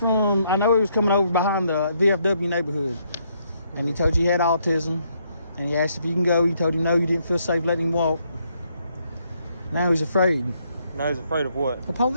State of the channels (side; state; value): both; inverted; correlation -0.73